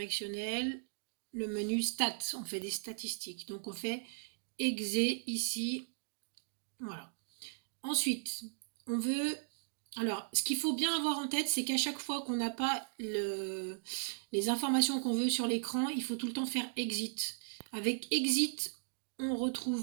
le menu stats. On fait des statistiques. Donc, on fait exé ici. Voilà. Ensuite, on veut... Alors, ce qu'il faut bien avoir en tête, c'est qu'à chaque fois qu'on n'a pas les informations qu'on veut sur l'écran, il faut tout le temps faire exit. Avec exit, on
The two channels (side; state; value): left; silent; digital silence